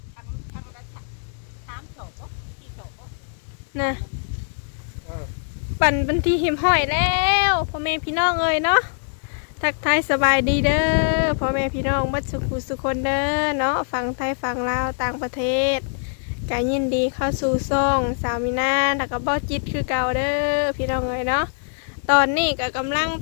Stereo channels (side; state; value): right; silent; digital silence